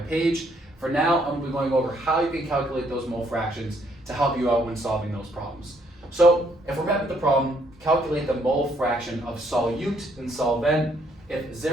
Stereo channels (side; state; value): both; normal; correlation 0.69